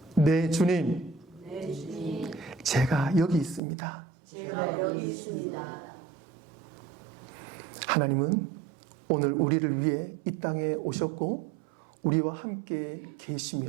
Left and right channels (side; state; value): left; drops out; at 3.6 s